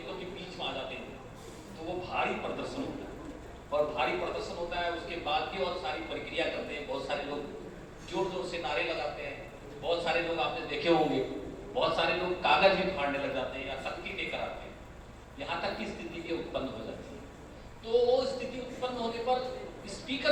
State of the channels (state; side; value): identical; both; correlation 1.00